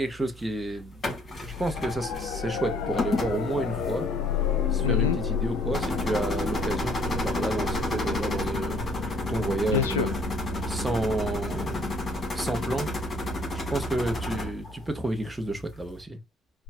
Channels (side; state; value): both; normal; correlation 0.61